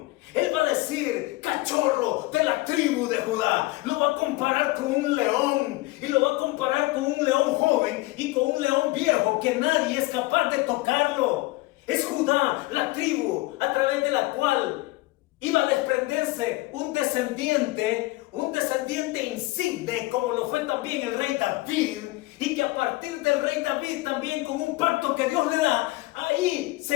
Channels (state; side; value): quieter; right; 20.7 dB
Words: Él va a decir, cachorro de la tribu de Judá. Lo va a comparar con un león. Y lo va a comparar con un león joven y con un león viejo que nadie es capaz de tocarlo. Es Judá, la tribu a través de la cual iba a desprenderse un descendiente insigne, como lo fue también el rey David. Y que a partir del rey David también, con un pacto que Dios le da, ahí